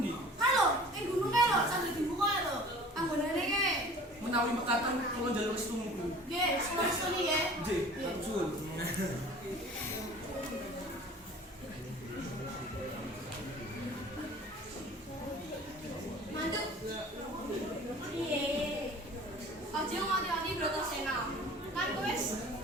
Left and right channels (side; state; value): both; normal; correlation 0.45